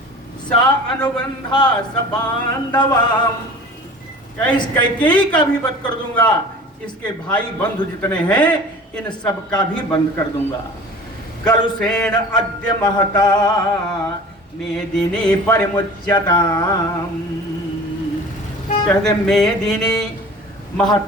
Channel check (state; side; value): normal; both; correlation 0.41